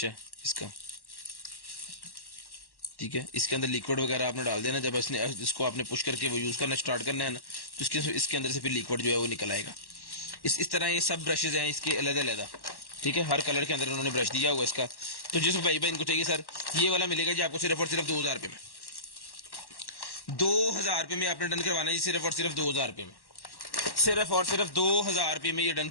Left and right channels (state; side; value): late; right; 1.1 ms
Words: है इसका, ठीक है। इसके अंदर लिक्विड वगैरह आपने डाल देना, जब इसको आपने पुश करके वो यूज करना स्टार्ट करना है ना, तो इसके अंदर से फिर लिक्विड जो है वो निकल आएगा। इस तरह ये सब ब्रशेज हैं इसके अलग अलग, ठीक है, हर कलर के अंदर उन्होंने ब्रश दिया हुआ इसका। तो जिस भाई इनको चाहिए सर ये वाला मिलेगा जी आपको सिर्फ और सिर्फ 2000 रुपये में, 2000 रुपये में आपने डन करवाना है जी, सिर्फ और सिर्फ 2000 रुपये में, सिर्फ और सिर्फ 2000 रुपये में ये डन